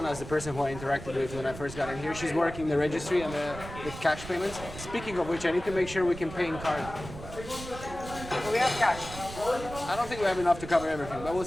is the person who I interacted with when I first got in here. She's working the registry and the cash payments. Speaking of which, I need to make sure we can pay in card. We have cash. I don't think we have enough to cover everything, but we'll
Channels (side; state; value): right; noise; rumble, 12 dB below the sound